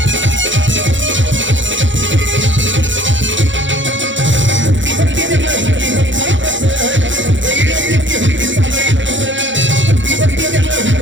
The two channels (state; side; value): late; left; 0.55 ms